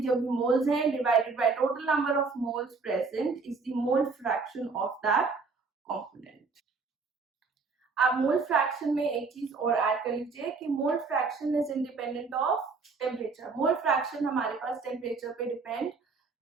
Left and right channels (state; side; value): quieter; left; 4.5 dB